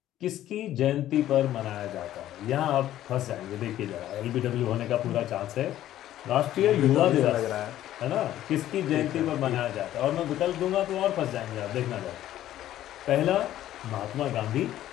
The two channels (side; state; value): right; quieter; 13.0 dB